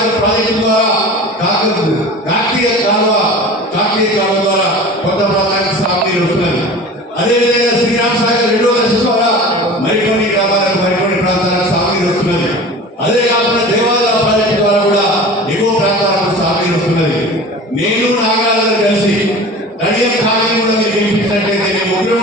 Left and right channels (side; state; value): both; normal; correlation 0.37